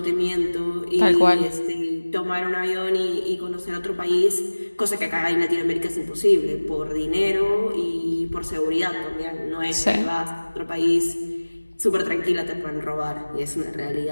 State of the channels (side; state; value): both; inverted; correlation -1.00